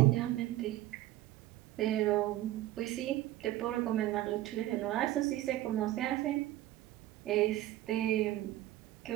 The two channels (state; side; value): quieter; left; 15.2 dB